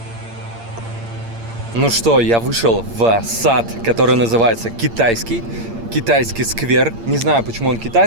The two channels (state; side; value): late; left; 8.7 ms